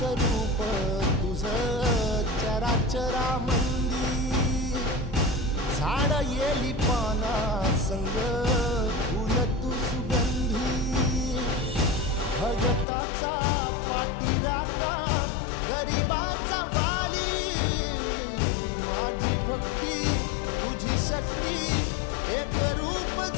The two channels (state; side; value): drops out; right; at 12.9 s